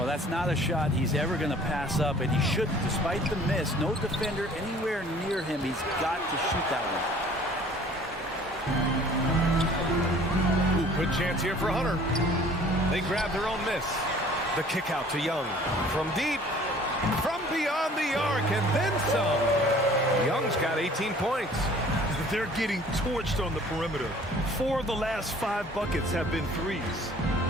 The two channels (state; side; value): normal; both; correlation 0.52